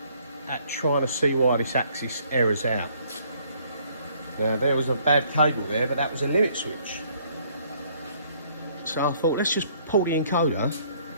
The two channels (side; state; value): both; inverted; correlation -0.62